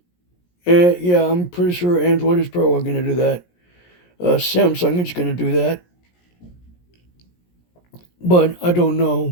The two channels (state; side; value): late; right; 17 ms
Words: Yeah, I'm pretty sure Android is probably going to do that. Samsung is going to do that. But I don't